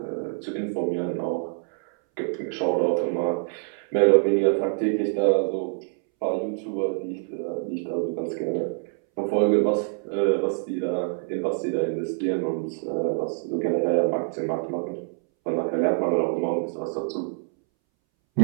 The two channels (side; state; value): left; silent; 61 dB below the other